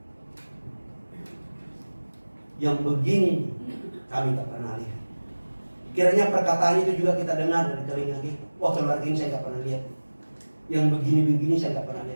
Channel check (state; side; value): inverted; both; correlation -1.00